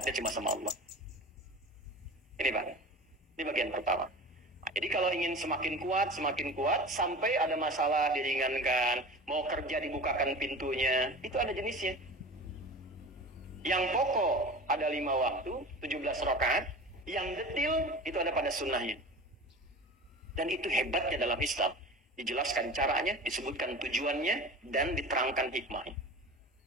cuma sama Allah. Ini Pak, ini bagian pertama. Nah, jadi kalau ingin semakin kuat, sampai ada masalah diringankan, mau kerja dibukakan pintunya, itu ada jenisnya. Yang pokok ada 5 waktu, 17 rakaat. Yang detil itu ada pada sunnahnya. Dan itu hebatnya dalam Islam. Dijelaskan caranya, disebutkan tujuannya, dan diterangkan hikmahnya.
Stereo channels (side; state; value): both; normal; correlation 0.35